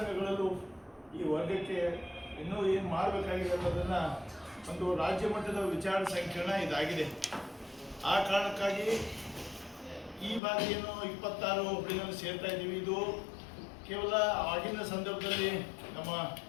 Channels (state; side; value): drops out; right; at 10.4 s